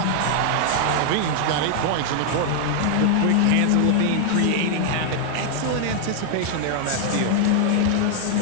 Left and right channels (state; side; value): different; both; correlation 0.00